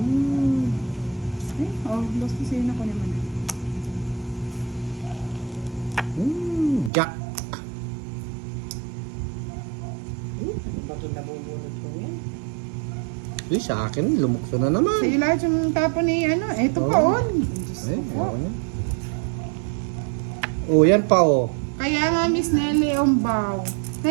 Ay, boss ko sa'yo na ko naman. Jack. Ano ba ito nabubunot ko yan? Uy, sa akin, lumukso na naman. Sa'yo lahat yung tapo ni ano. Ito pa Oh. on. Diyos Ay, ko po. ako na. Oh, yan pa oh. Kaya nga, Miss Nelly Ombaw.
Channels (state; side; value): drops out; left; at 6.9 s